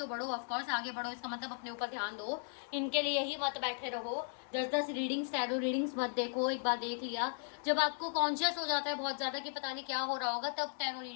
बढ़ो, ऑफ कोर्स आगे बढ़ो, इसका मतलब अपने ऊपर ध्यान दो, इनके लिए ही मत बैठे रहो। 10-10 रीडिंग्स, टैरो रीडिंग्स मत देखो। एक बार देख लिया, जब आपको कॉन्शियस हो जाता है बहुत ज्यादा कि पता नहीं क्या हो रहा होगा, तब टैरो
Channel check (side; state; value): right; silent; digital silence